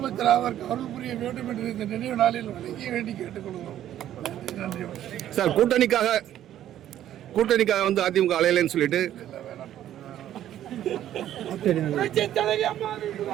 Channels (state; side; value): quieter; left; 11.8 dB